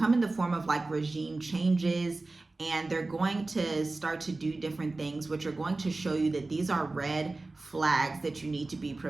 in the form of like regime changes, and they're going to start to do different things, which are going to show you that these are red flags that you need to be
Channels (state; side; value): quieter; left; 3.2 dB